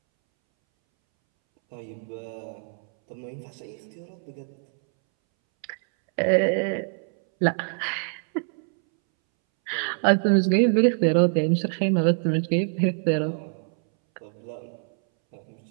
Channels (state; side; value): silent; left; 62 dB below the other